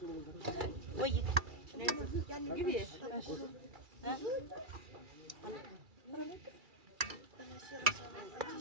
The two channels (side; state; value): left; late; 2.3 ms